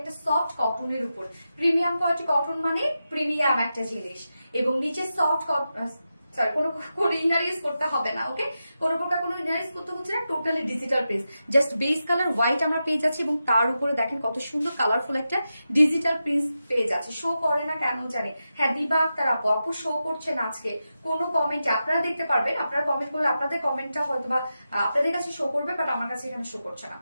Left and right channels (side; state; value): both; inverted; correlation -0.90